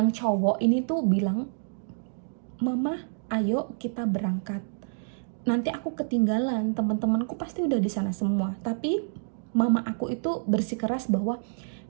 cowok ini tuh bilang, "Mama, ayo kita berangkat. Nanti aku ketinggalan, teman-temanku pasti udah di sana semua." Tapi mama aku itu bersikeras bahwa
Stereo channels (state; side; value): silent; left; digital silence